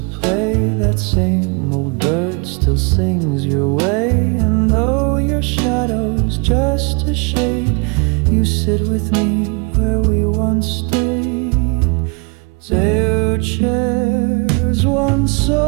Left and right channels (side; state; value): left; quieter; 32.2 dB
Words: play, that same old bird still sings your way. And though your shadow's just a shade, you sit with me where we once stayed. 2 chairs, one